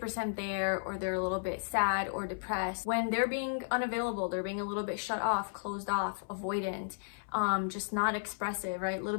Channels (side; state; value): right; silent; 55 dB below the other